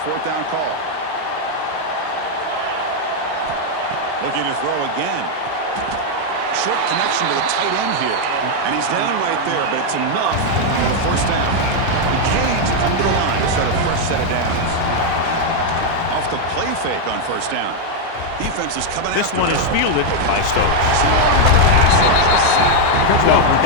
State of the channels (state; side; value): different; both; correlation 0.00